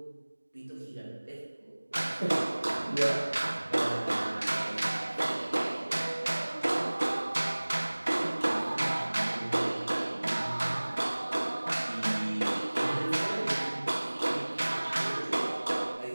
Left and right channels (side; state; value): both; inverted; correlation -1.00